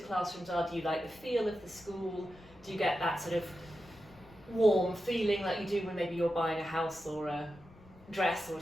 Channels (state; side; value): noise; left; rumble, 23 dB below the sound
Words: are. Do you like the feel of the school? Do you get that sort of warm feeling like you do when maybe you're buying a house or a dress or